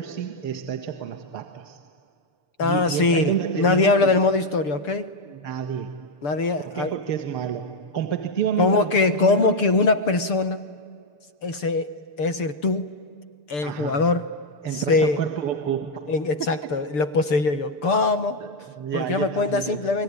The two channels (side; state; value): right; late; 6.8 ms